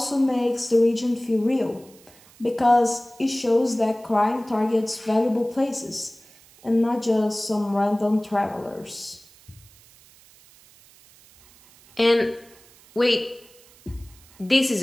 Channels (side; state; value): right; noise; hiss, 26 dB below the sound